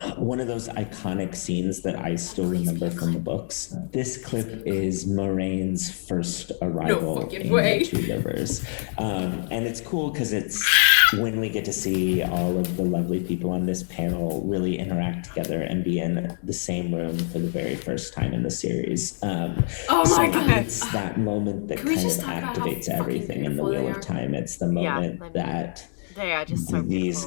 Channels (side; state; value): right; silent; 61 dB below the other